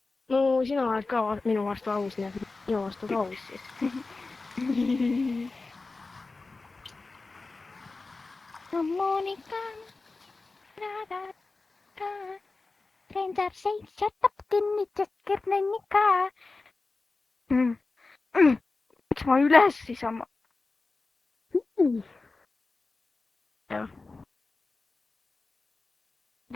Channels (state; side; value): quieter; right; 3.6 dB